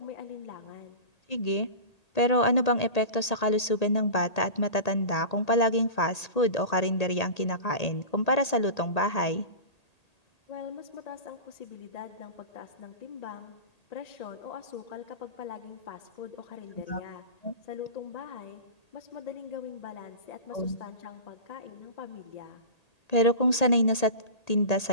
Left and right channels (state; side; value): late; right; 1.8 ms